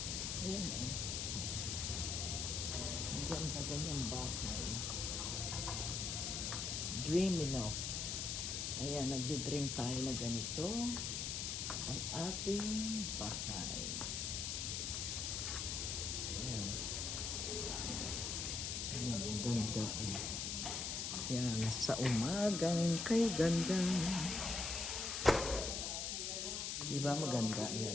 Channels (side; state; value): left; noise; hiss, 1 dB below the sound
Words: Ayan, oh. Ang ganda ganyang bahay. Dreamy, no? Ayan, nagdi-dream tayo na ganito ang ating bahay. Ayan. Ayan, ang ganda, eh. Ayan, sa umagang kay ganda. Di ba maganda?